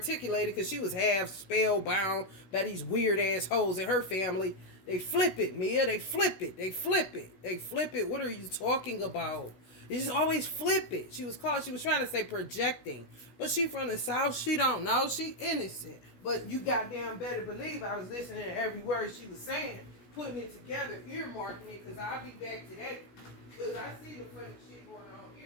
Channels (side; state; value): right; late; 16 ms